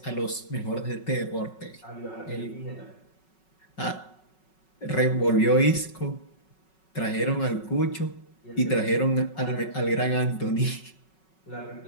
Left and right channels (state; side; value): late; right; 5.4 ms